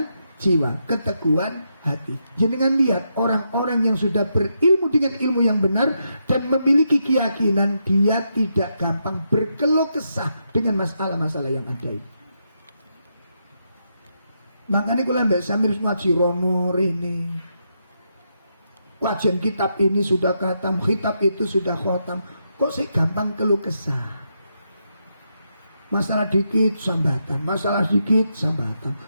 jiwa, keteguhan hati. Jangan lihat orang-orang yang sudah berilmu dengan ilmu yang benar dan memiliki keyakinan, dia tidak gampang berkeluh kesah dengan masalah-masalah yang ada ini. Makanya kalau Mbak Samir ngaji rono ini, kajian kitab ini sudah khatam, kitab itu sudah khatam, kok sih gampang keluh kesah? Masalah dikit sambatan, masalah dikit sambatan,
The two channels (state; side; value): inverted; both; correlation -0.82